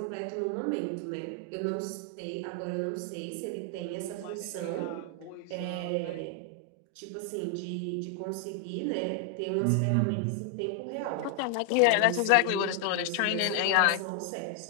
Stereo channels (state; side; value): different; both; correlation 0.00